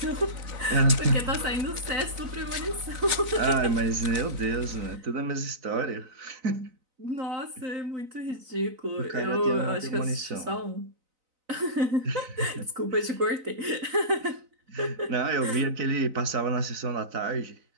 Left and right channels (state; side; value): late; left; 4.0 ms